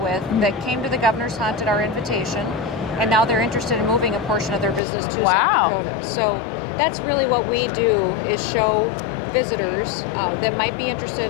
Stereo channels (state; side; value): drops out; right; at 4.8 s